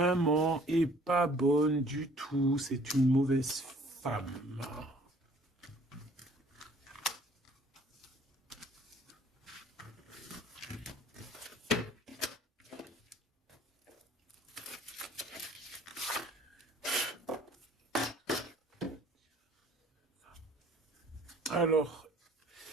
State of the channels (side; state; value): both; normal; correlation 0.56